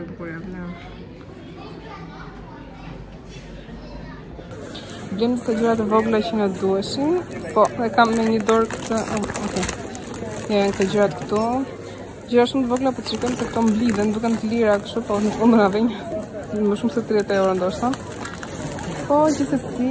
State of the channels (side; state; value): both; identical; correlation 1.00